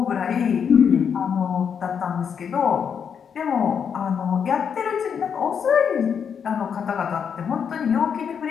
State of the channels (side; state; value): right; quieter; 7.2 dB